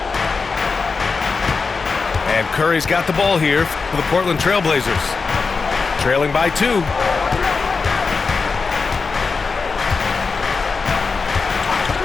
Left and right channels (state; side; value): quieter; right; 4.6 dB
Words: And Curry's got the ball here for the Portland Trailblazers. Trailing by 2.